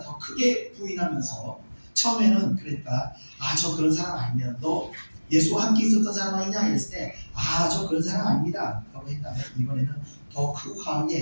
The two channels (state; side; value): inverted; both; correlation -1.00